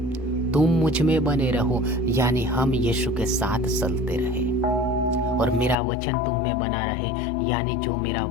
तुम मुझ में बने रहो यानी हम यीशु के साथ चलते रहे, और मेरा वचन तुम में बना रहे यानी जो मेरा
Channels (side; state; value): right; drops out; at 5.8 s